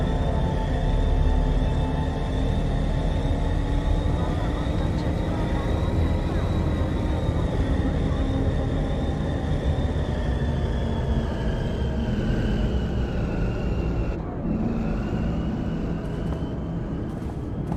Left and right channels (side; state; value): both; identical; correlation 1.00